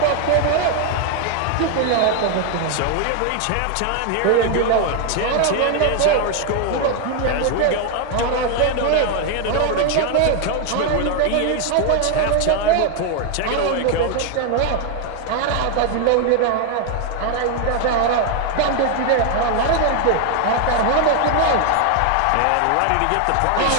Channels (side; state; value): both; different; correlation 0.01